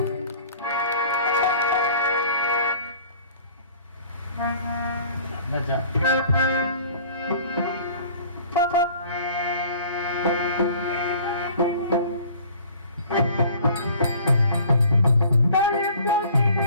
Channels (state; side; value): inverted; both; correlation -0.50